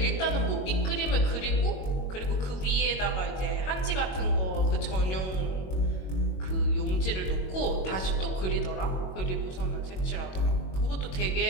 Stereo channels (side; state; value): right; late; 21 ms